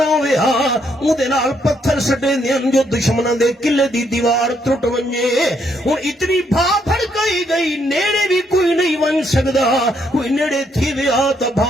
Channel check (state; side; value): normal; both; correlation 0.73